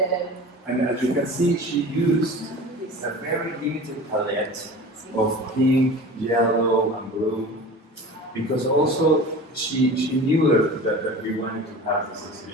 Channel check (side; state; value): both; normal; correlation 0.37